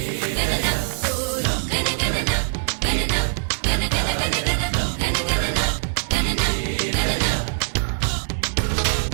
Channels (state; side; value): silent; left; 64 dB below the other